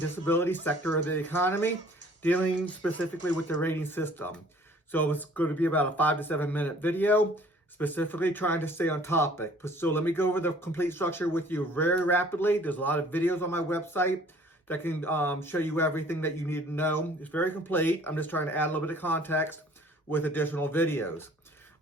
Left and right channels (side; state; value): both; normal; correlation 0.54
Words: sector of the economy, dealing specifically with the rating system. So it's going to be about a 5 to 7 minute video, specifically trying to stay on topic. So let me go over the complete structure with you very rapidly. There's a lot of videos on my website that can show you everything that you need to know. It's very complete. I'm just trying to add a little bit of context with additional videos.